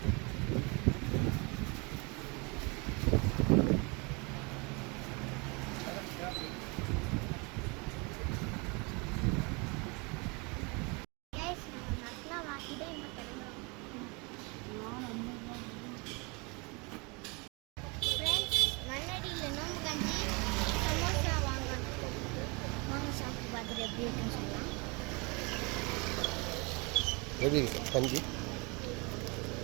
எப்படி இருக்கு கஞ்சி?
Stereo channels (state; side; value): quieter; left; 28.5 dB